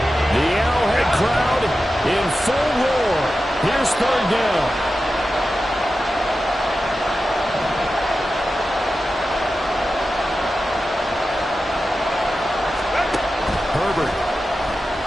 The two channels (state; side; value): normal; both; correlation 0.92